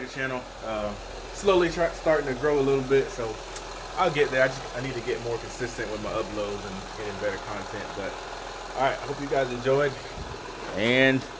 channel. Slowly starting to grow a little bit, so I'll get there. I need to get more consistent with my uploads and getting better content. But all right, I hope you guys enjoyed, and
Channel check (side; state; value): both; identical; correlation 1.00